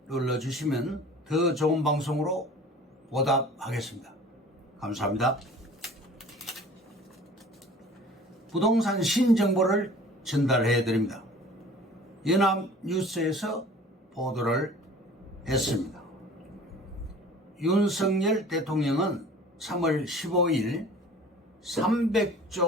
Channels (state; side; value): normal; both; correlation 0.46